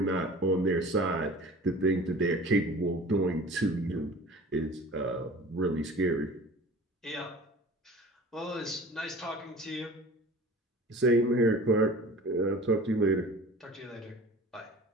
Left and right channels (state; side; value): normal; both; correlation 0.41